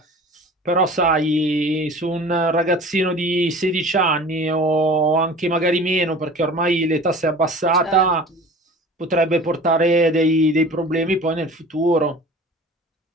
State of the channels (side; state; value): both; normal; correlation 0.41